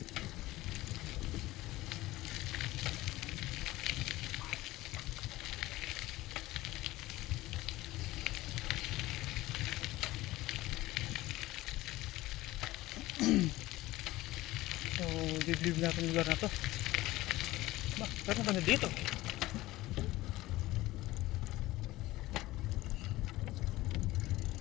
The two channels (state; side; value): quieter; right; 17.8 dB